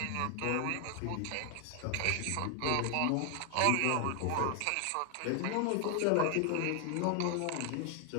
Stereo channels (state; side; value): different; both; correlation 0.00